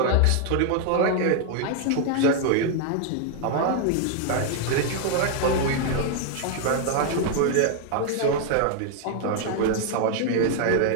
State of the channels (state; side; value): different; both; correlation 0.00